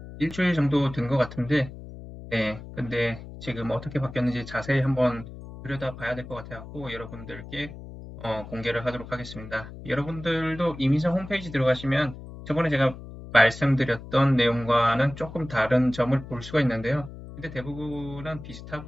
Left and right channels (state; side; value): noise; left; hum, 13 dB below the sound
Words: 일주일 정도 된 것 같은데, 네, 근데 지금 어떻게 바뀌었는지 자세히 한번 들여다 봐야 될 것 같아서 여러분들께 공개를 하도록 하겠습니다. 여러분들도 이민성 홈페이지 들어가시면 저번에 제가 말씀드렸던 내용과는 조금 다른 점을 볼 수가 있는데요. 근데 대부분은